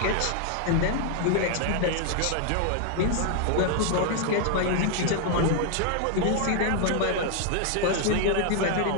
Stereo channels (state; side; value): different; both; correlation 0.00